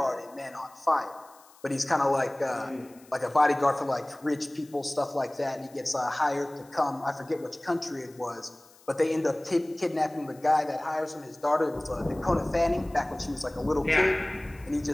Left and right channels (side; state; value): left; noise; hiss, 26 dB below the sound